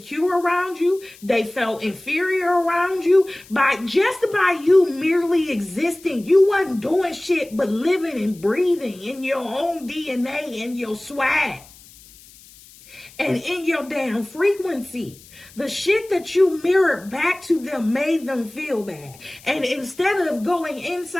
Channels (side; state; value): left; noise; hiss, 23 dB below the sound